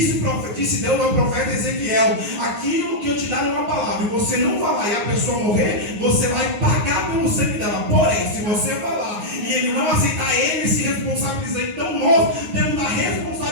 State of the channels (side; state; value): left; late; 9.5 ms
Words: Deus ao profeta Ezequiel, aquilo que eu te dar é uma palavra, e você não falar e a pessoa morrer, você vai pagar pelo sangue dela. Porém, se você falar e ele não aceitar, ele se responsabiliza. Então nós temos a